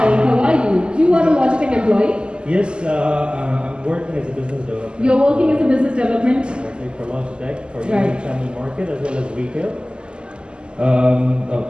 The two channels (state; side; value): late; left; 0.049 ms